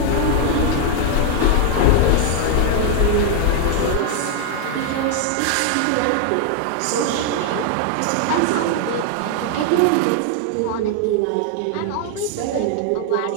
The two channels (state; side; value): different; both; correlation 0.00